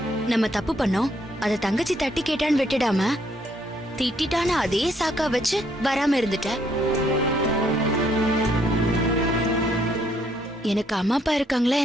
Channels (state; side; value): normal; both; correlation 0.70